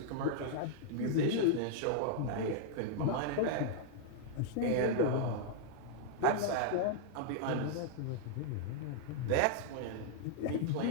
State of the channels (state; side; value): different; both; correlation -0.01